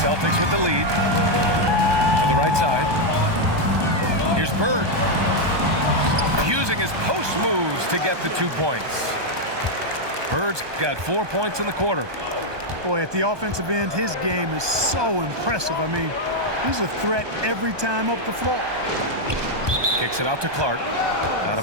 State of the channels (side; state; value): left; late; 1.2 ms